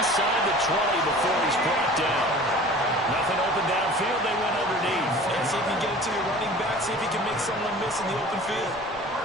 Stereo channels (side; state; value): both; normal; correlation 0.43